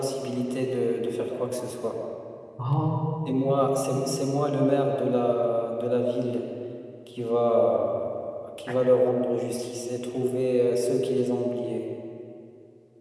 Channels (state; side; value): identical; both; correlation 1.00